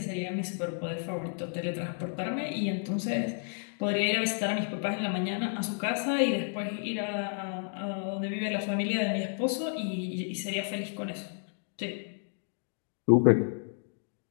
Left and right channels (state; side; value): silent; right; 57 dB below the other